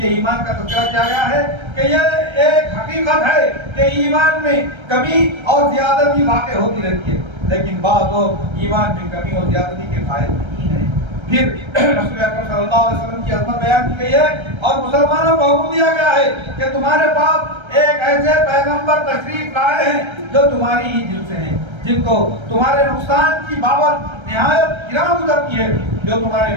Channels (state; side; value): late; left; 1.3 ms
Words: ایمان کا تذکرہ کیا گیا ہے کہ یہ ایک حقیقت ہے کہ ایمان میں کمی اور زیادتی واقع ہوتی رہتی ہے، لیکن بعض لوگ ایمان میں کمی اور زیادتی کے قائل نہیں ہیں۔ پھر رسول اکرم صلی اللہ علیہ وسلم کی عظمت بیان کی گئی ہے اور مسلمانوں کو حکم دیا گیا ہے کہ تمہارے پاس ایک ایسے پیغمبر تشریف لائے ہیں جو تمہاری ہی جنس سے ہیں، جن کو تمہارے نقصان کی بابت نہایت گراں گزرتی ہے، جو تمہارے